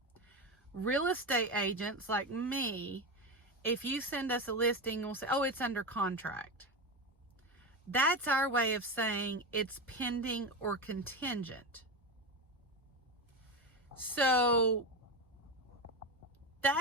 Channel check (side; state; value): both; normal; correlation 0.18